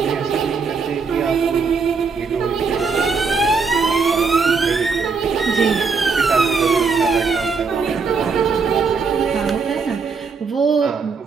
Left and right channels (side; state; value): left; quieter; 5.0 dB